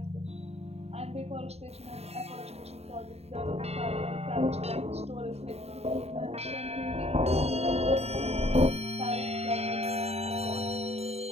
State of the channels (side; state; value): left; late; 0.30 ms